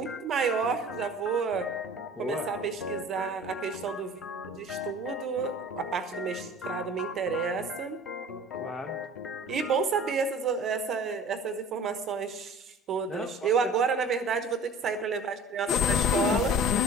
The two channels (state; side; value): normal; both; correlation 0.43